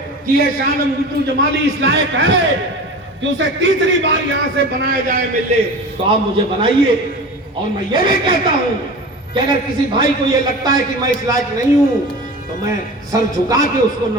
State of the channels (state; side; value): normal; both; correlation 0.34